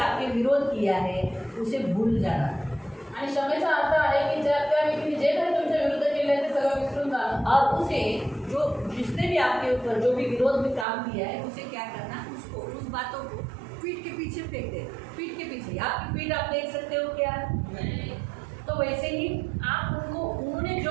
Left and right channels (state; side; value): drops out; left; at 10.9 s